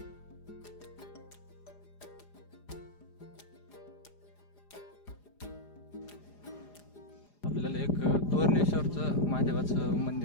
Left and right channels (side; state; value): right; late; 4.9 ms